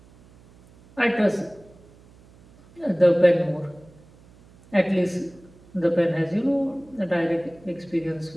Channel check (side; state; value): right; noise; hum, 26 dB below the sound